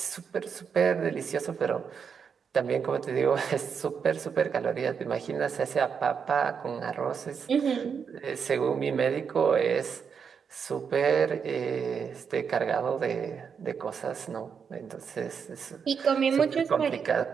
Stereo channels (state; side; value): quieter; left; 6.6 dB